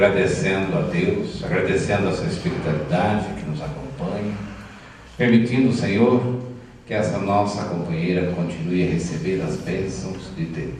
a Deus, agradecendo a sua espiritualidade que nos acompanha, permitindo, Senhor, que essa nossa companheira continue a receber as bênçãos de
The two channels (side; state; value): both; identical; correlation 1.00